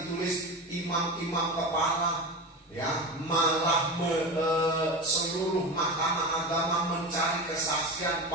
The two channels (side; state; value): both; normal; correlation 0.24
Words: ditulis, imam-imam kepala, ya, malah seluruh mahkamah agama mencari kesaksian